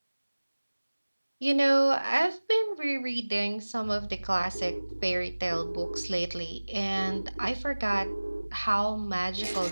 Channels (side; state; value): both; inverted; correlation -1.00